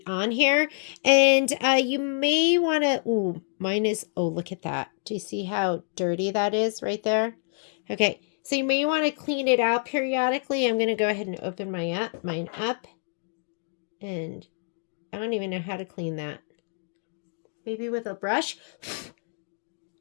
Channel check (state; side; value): silent; right; 60 dB below the other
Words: on here, and you may want to, ooh, mine is, oh, look at that. Do you see how dirty that is right there? Okay, so you may want to clean it out periodically. I'm going to go ahead and open mine up, and I don't even know how to clean that. Maybe with a brush.